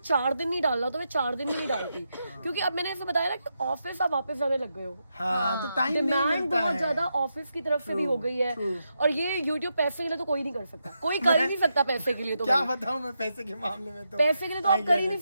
दिन नहीं डालना तो मैं 4 दिन भी नहीं डालती, क्योंकि अब मैंने ऐसे बताया ना कि ऑफिस आप वापस जाने लग गए हो। हाँ, तो टाइम नहीं डिमांड मिलता बहुत है। ज्यादा ऑफिस की तरफ से भी हो गई है। और ये यूट्यूब पैसे के लिए तो कोई नहीं कर सकता, कोई कर ही नहीं सकता पैसे के लिए। तो क्या भाई, बताऊं मैं पैसे के मामले में तो पैसे के लिए तो आप कर ही नहीं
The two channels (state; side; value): inverted; both; correlation -0.84